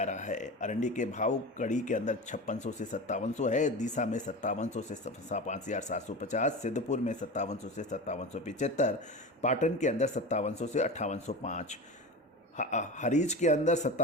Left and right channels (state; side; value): normal; both; correlation 0.28